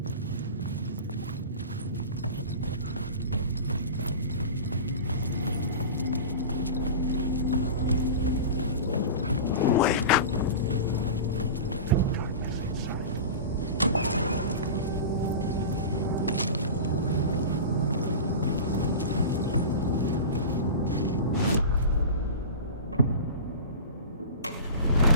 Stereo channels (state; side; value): inverted; both; correlation -0.31